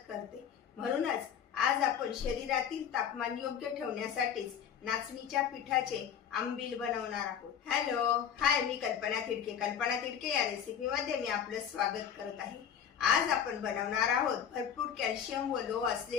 करते। म्हणूनच आज आपण शरीरातील तापमान योग्य ठेवण्यासाठीच नाचणीच्या पिठाचे आंबील बनवणार आहोत। हॅलो हाय, मी कल्पना तिडके। कल्पना तिडके या रेसिपी मध्ये मी आपलं स्वागत करत आहे। आज आपण बनवणार आहोत भरपूर कॅल्शियम व लोह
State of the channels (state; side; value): quieter; right; 8.4 dB